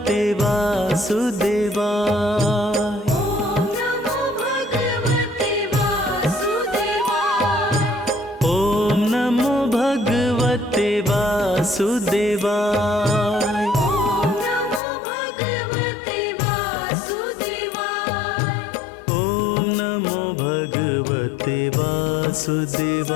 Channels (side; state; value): right; drops out; at 14.8 s